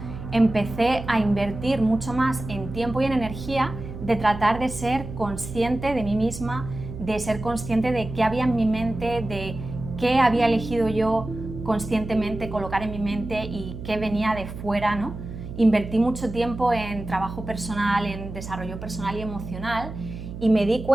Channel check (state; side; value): noise; right; hum, 10 dB below the sound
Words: empecé a invertir mucho más en tiempo y en energía de tratar de ser consciente de mí misma, de ser consciente de qué había en mi mente, de qué había elegido yo conscientemente colocar en mi mente y qué venía de fuera, ¿no? Invertí mucho tiempo en trabajo personal, en desarrollo personal y emocional, y me di